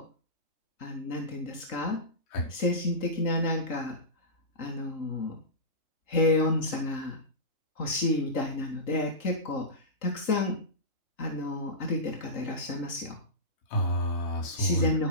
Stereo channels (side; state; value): right; late; 3.8 ms